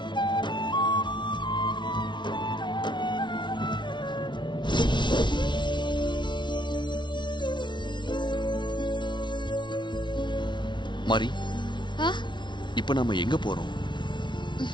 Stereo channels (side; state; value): right; late; 0.23 ms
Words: மாரி, இப்ப நாம எங்க போறோம்?